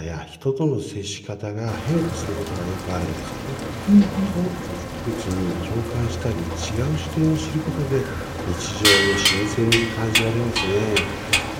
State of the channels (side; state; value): both; identical; correlation 1.00